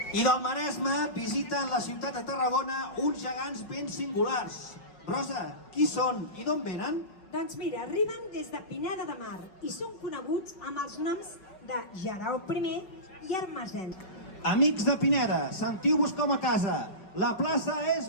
I del Maresme visiten la ciutat de Tarragona uns gegants ben singulars. Rosa, qui són i d'on venen? Doncs mira, arriben des de Pineda de Mar i són coneguts amb els noms de Jarau I i Hermesens. Amics de Pineda, sentiu-vos com a casa. La plaça és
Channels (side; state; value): right; late; 5.4 ms